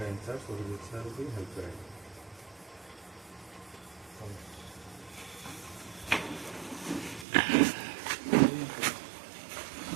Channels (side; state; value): left; drops out; at 7.2 s